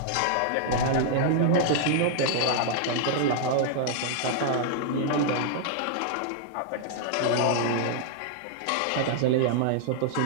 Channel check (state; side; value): different; both; correlation -0.01